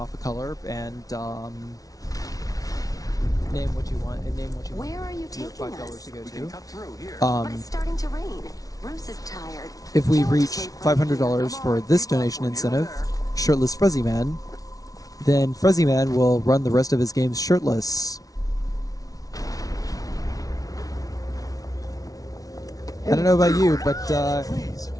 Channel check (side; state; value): right; late; 0.18 ms